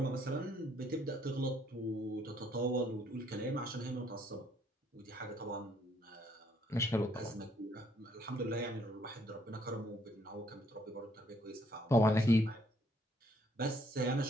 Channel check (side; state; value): both; normal; correlation 0.67